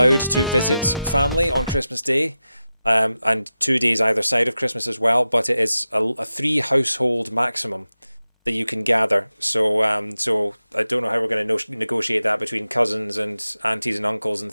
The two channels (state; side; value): inverted; both; correlation -0.93